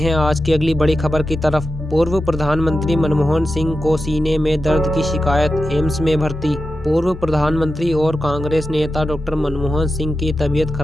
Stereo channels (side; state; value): both; normal; correlation 0.90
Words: आज की अगली बड़ी खबर की तरफ। पूर्व प्रधानमंत्री मनमोहन सिंह को सीने में दर्द की शिकायत, एम्स में भर्ती। पूर्व प्रधानमंत्री और कांग्रेस नेता डॉक्टर मनमोहन सिंह की तबीयत